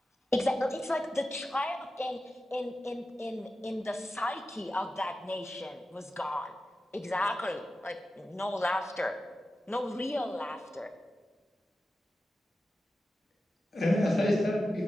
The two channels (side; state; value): both; normal; correlation 0.92